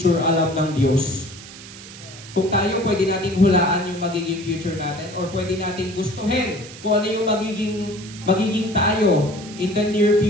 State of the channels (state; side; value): noise; right; hiss, 16 dB below the sound